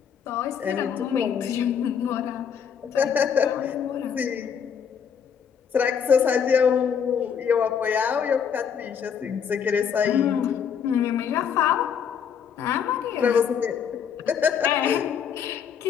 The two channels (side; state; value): right; quieter; 7.5 dB